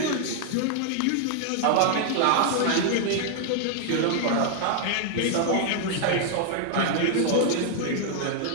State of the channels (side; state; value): both; different; correlation 0.00